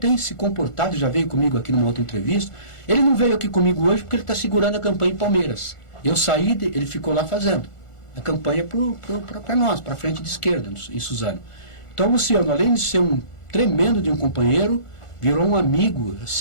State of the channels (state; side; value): late; right; 1.4 ms